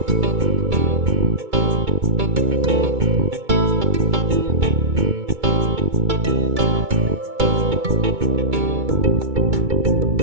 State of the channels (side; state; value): left; late; 2.2 ms